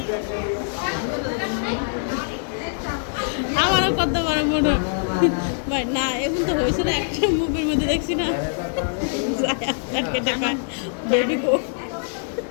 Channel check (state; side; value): silent; right; digital silence